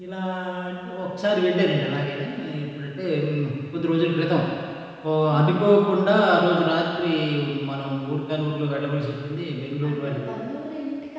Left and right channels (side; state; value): both; identical; correlation 1.00